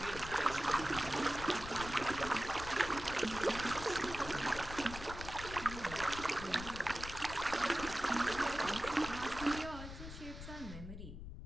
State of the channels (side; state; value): left; noise; rumble, 10 dB below the sound